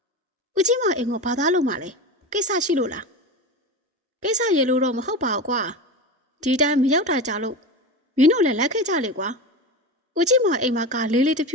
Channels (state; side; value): normal; both; correlation 0.25